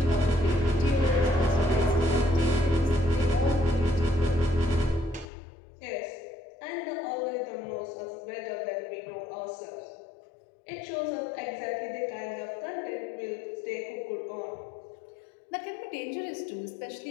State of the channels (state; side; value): drops out; right; at 5.2 s